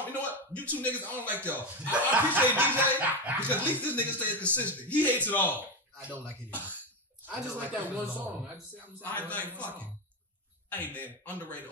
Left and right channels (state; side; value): normal; both; correlation 0.13